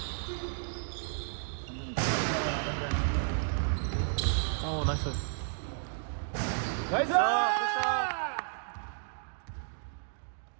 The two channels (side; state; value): left; silent; digital silence